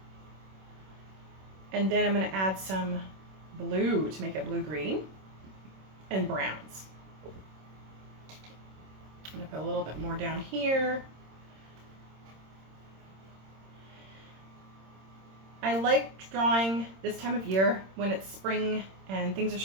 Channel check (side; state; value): left; late; 26 ms